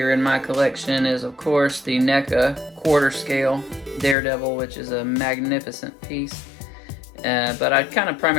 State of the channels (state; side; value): drops out; right; at 4.2 s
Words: in my collection is, of course, the NECA quarter scale Daredevil, which is a magnificent piece. But I kind of